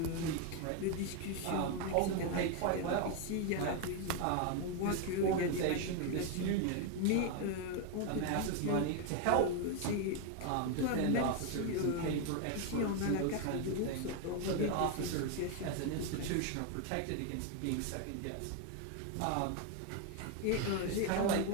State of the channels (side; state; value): both; different; correlation 0.01